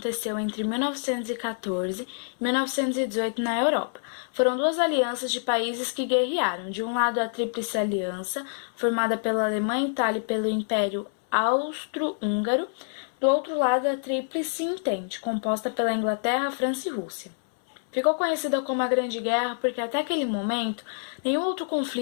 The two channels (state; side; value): silent; right; 60 dB below the other